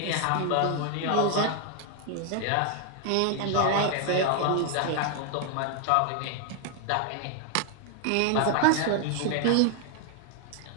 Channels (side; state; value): both; different; correlation 0.00